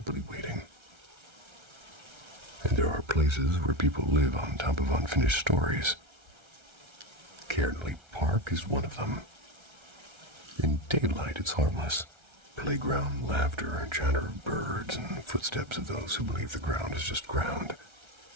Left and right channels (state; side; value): late; left; 1.3 ms